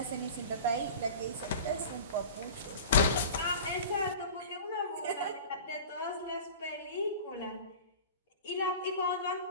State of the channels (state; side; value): inverted; both; correlation -0.36